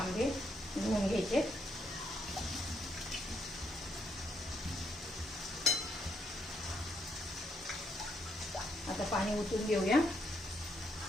धुवून घ्यायचे. आता पाणी ओतून घेऊया.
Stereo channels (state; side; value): normal; both; correlation 0.75